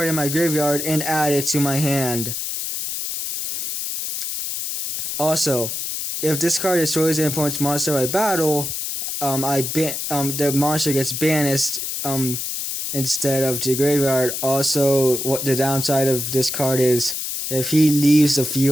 in my graveyard and add it to my hand. Also, if this card destroys an opponent's monster by battle, the monster gets banished instead of to the graveyard. Also, what the downside of this card is, if he leaves the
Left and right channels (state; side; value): noise; left; hiss, 4 dB below the sound